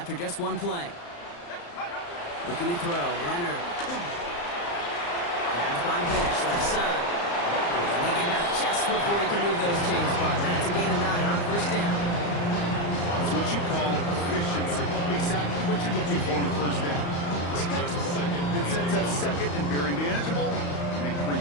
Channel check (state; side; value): late; right; 35 ms